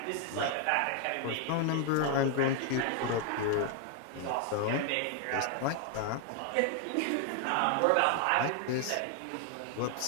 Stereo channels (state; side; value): different; both; correlation 0.00